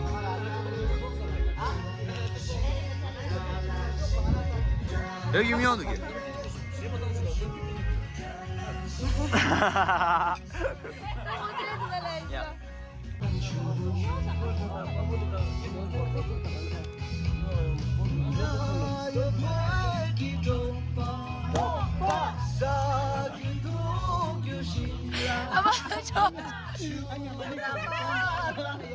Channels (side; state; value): both; identical; correlation 1.00